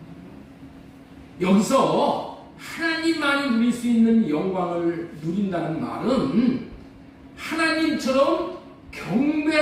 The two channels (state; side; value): identical; both; correlation 1.00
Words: 거예요. 여기서 하나님만이 누릴 수 있는 영광을 누린다는 말은 하나님처럼